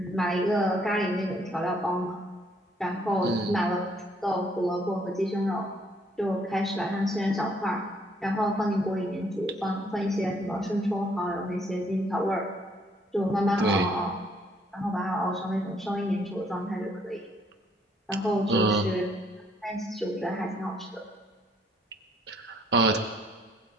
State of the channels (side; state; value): both; normal; correlation 0.67